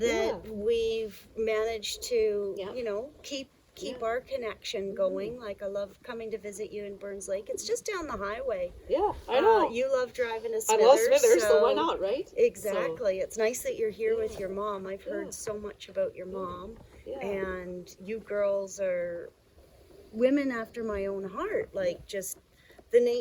that yeah. we've managed to, Yeah. you know, keep Yeah. our connection going. Like, I love coming to visit you in Burns Lake. It's just down the highway. Yeah, I know. You love driving to I Smithers. love Smithers, so why not, right? Exactly. It's nice that you're here with Yeah. your mom. I've heard Yeah. so much about your mom, Yeah. and you girls are women after my own heart. Like, just the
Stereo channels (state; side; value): identical; both; correlation 1.00